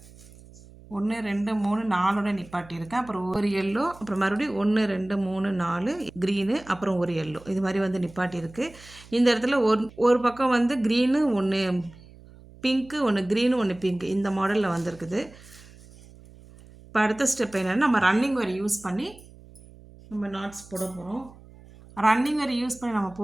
1 2 3 4ஓட நிப்பாட்டியிருக்கேன். அப்புறம் ஒரு எல்லோ, அப்புறம் மறுபடியும் 1 2 3 4 க்ரீனு, அப்புறம் ஒரு எல்லோ, இது மாதிரி வந்து நிப்பாட்டியிருக்கு. இந்த இடத்துல ஒரு பக்கம் வந்து க்ரீனு 1 பிங்க்கு, 1 க்ரீனு 1 பிங்க்கு, இந்த மாடலில் வந்திருக்குது. இப்போ அடுத்த ஸ்டெப் என்னென்னா, நம்ம ரன்னிங் ஒயர் யூஸ் பண்ணி நம்ம நாட்ஸ் போட போகிறோம். ரன்னிங் ஒயர் யூஸ் பண்ணி நம்ம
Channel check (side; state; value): right; noise; hum, 22 dB below the sound